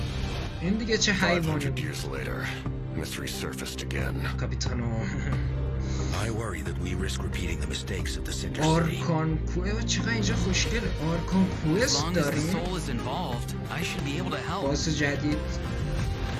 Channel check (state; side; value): identical; both; correlation 1.00